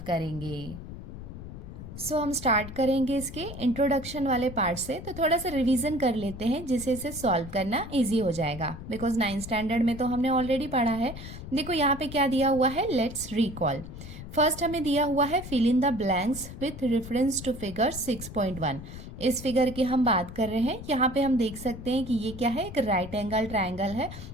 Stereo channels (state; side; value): noise; left; rumble, 11 dB below the sound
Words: करेंगे। हम स्टार्ट करेंगे इसके इंट्रोडक्शन वाले पार्ट से। तो थोड़ा सा रिवीजन कर लेते हैं जिससे इसे सॉल्व करना इजी हो जाएगा, बिकॉज 9th स्टैंडर्ड में तो हमने ऑलरेडी पढ़ा है। देखो यहाँ पे क्या दिया हुआ है, लेट्स रिकॉल। फर्स्ट हमें दिया हुआ है fill in the blanks with reference to figure 6.1। इस फिगर की हम बात कर रहे हैं। यहाँ पे हम देख सकते हैं कि ये क्या है, एक राइट एंगल ट्रायंगल है